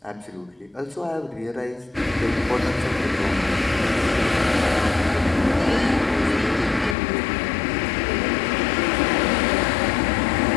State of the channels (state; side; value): drops out; right; at 7.0 s